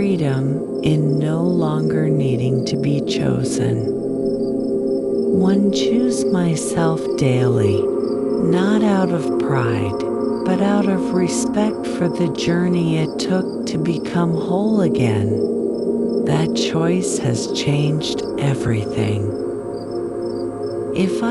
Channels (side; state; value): both; identical; correlation 1.00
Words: in no longer needing to be chosen. One choose myself daily, not out of pride, but out of respect for the journey it took to become whole again. That choice has changed everything. If